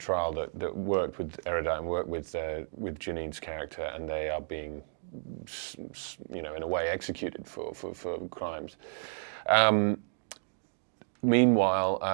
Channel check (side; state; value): left; silent; digital silence